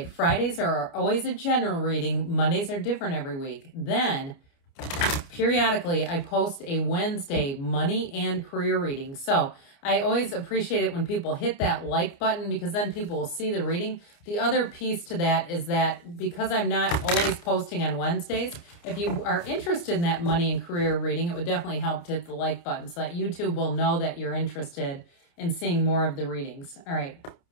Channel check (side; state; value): right; late; 29 ms